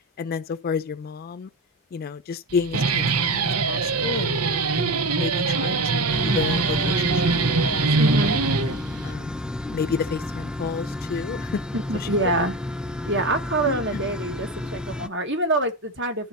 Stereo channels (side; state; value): both; normal; correlation 0.24